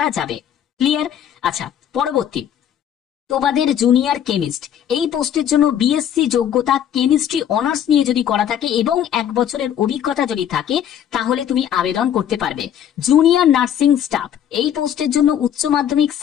যাবে। ক্লিয়ার? আচ্ছা, পরবর্তী তোমাদের জুনিয়র কেমিস্ট, এই পোস্টের জন্য বিএসসি যোগ্যতা কেমিস্ট্রি অনার্স নিয়ে যদি করা থাকে এবং 1 বছরের অভিজ্ঞতা যদি থাকে তাহলে তুমি আবেদন করতে পারবে। জুনিয়র নার্সিং স্টাফ, এই পোস্টের জন্য উচ্চ মাধ্যমিক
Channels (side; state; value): right; quieter; 9.8 dB